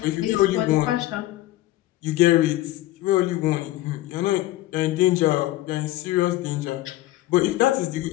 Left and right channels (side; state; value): right; quieter; 16.1 dB